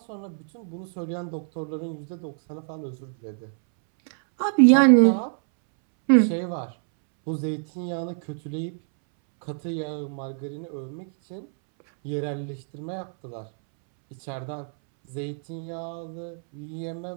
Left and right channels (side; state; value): left; silent; 61 dB below the other